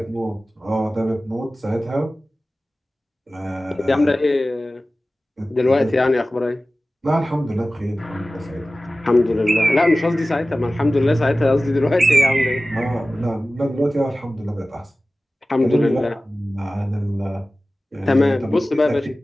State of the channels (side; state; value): both; normal; correlation 0.96